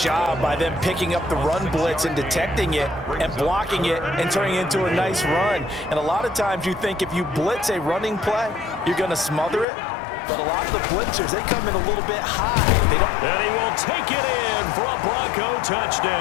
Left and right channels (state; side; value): drops out; right; at 9.7 s